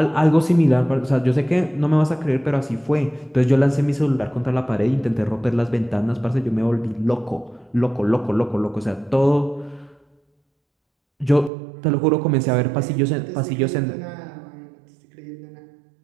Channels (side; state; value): left; drops out; at 11.5 s